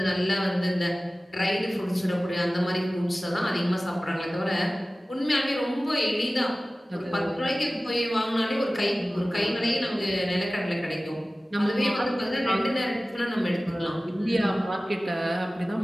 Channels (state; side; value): normal; both; correlation 0.97